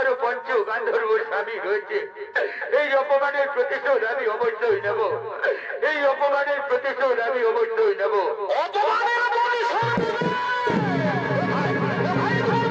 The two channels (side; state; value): both; identical; correlation 1.00